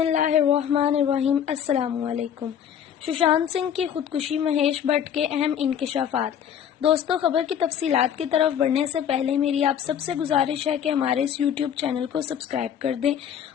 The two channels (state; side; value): quieter; right; 9.0 dB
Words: अस्सलामुअलैकुम। सुशांत सिंह की खुदकुशी, महेश भट्ट के अहम इंकशाफात। दोस्तों, खबर की तफसीलात की तरफ बढ़ने से पहले मेरी आप सबसे गुजारिश है कि हमारे इस यूट्यूब चैनल को सब्सक्राइब कर दें